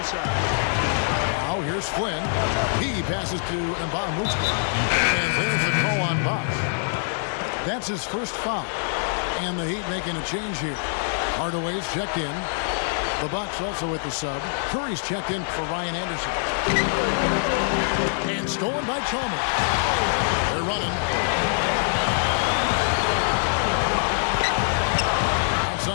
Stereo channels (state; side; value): silent; right; digital silence